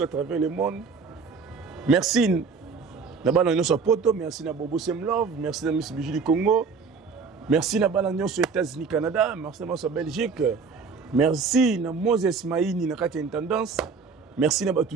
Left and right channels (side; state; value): left; quieter; 5.1 dB